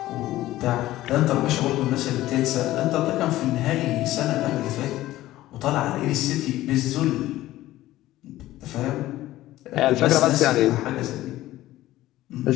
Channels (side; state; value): right; quieter; 15.6 dB